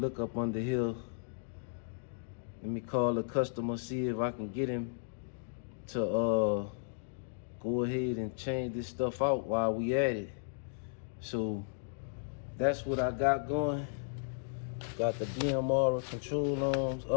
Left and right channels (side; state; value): right; silent; digital silence